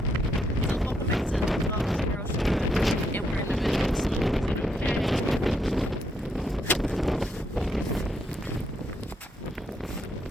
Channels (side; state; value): both; normal; correlation 0.76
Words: So welcome back to the vlog. Girls, and we're in the middle of snow.